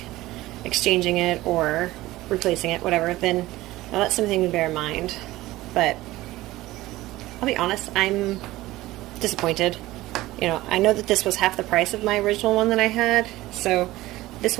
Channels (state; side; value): quieter; left; 17.5 dB